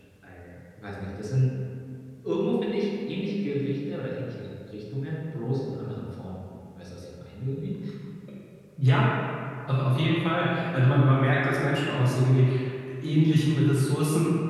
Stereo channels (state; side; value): identical; both; correlation 1.00